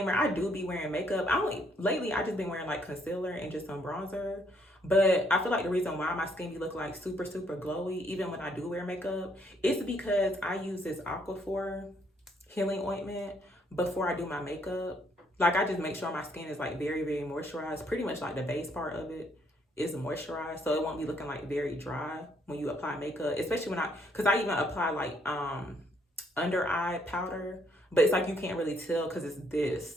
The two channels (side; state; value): both; normal; correlation 0.69